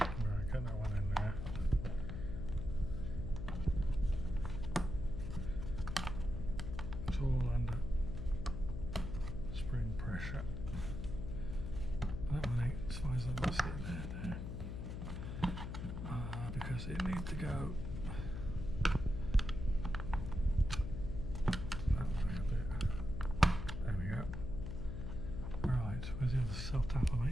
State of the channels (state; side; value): noise; left; hum, 5 dB below the sound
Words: get that one in there. It's all under spring pressure. That one ain't as far as I'm going to sit there now. Because it needs to go that way a bit. There we go. Right, where's the other self tapper,